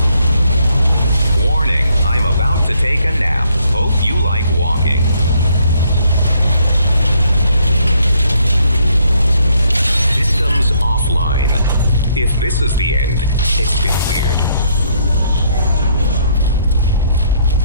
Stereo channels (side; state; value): both; inverted; correlation -0.69